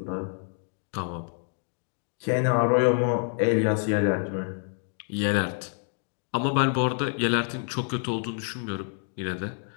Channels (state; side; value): silent; right; 59 dB below the other